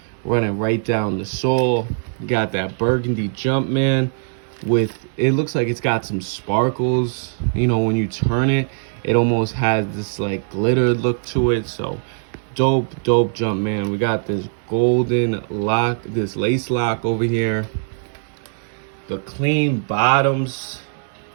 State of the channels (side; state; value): left; silent; 65 dB below the other